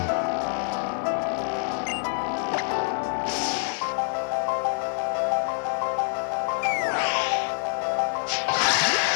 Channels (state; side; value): silent; right; digital silence